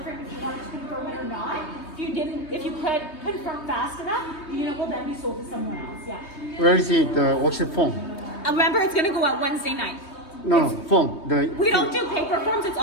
frame if you wanted to confirm it or not. If you could confirm fast enough, the unit will then be sold to someone else, yeah. Where is it, the worksheet form? Remember, it's gonna go out Wednesday night. No, form. We don't do paper forms, it's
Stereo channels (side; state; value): right; late; 3.2 ms